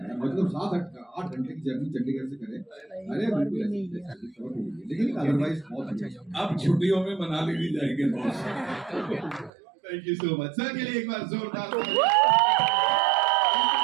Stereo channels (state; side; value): drops out; left; at 9.5 s